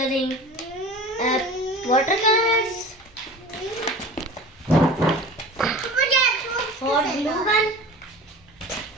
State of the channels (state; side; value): normal; both; correlation 0.38